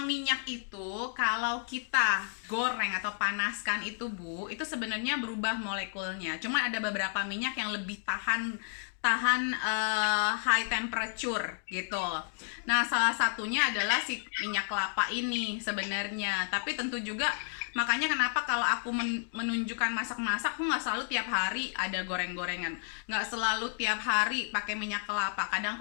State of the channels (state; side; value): silent; right; digital silence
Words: minyak itu kalau kita goreng atau panaskan itu Bu, itu sebenarnya berubah molekulnya. Cuma ada beberapa minyak yang lebih tahan high temperature gitu. Nah, salah satunya adalah si minyak kelapa ini sebenarnya. Tapi tentu juga makanya kenapa kalau aku menunjukkan masak-masak, aku nggak selalu tiap hari ada goreng-gorengan. Nggak selalu tiap hari pakai minyak kelapa. Kadang